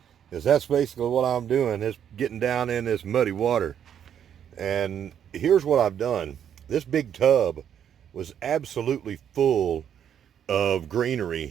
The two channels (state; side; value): quieter; left; 9.1 dB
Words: because that's basically what I'm doing, is getting down in this muddy water. And here's what I've done. This big tub was absolutely full of